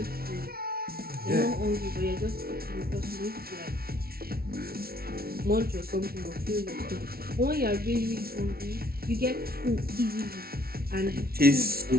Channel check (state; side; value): late; left; 0.44 ms